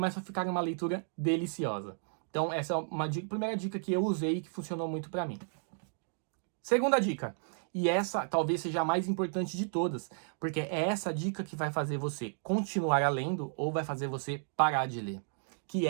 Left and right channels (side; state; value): left; silent; digital silence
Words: a ficar uma leitura deliciosa. Então essa é uma primeira dica que eu usei e que funcionou muito para mim. Segunda dica, e essa talvez seja a mais importante de todas, porque é essa dica que vai fazer você continuar lendo ou vai fazer você parar de ler, que